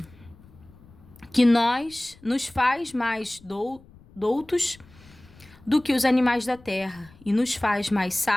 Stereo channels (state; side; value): noise; left; rumble, 25 dB below the sound